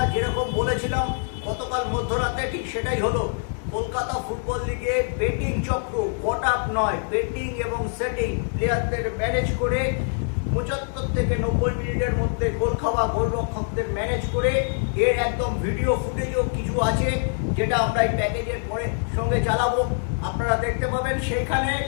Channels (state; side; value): silent; right; 56 dB below the other